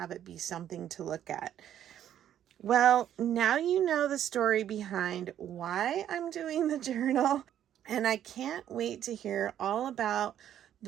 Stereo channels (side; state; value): left; quieter; 10.7 dB